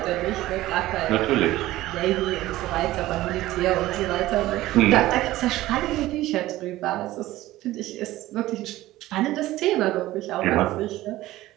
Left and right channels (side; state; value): left; quieter; 16.3 dB